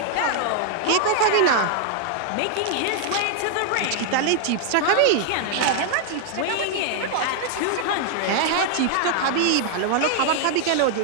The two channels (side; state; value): both; different; correlation 0.00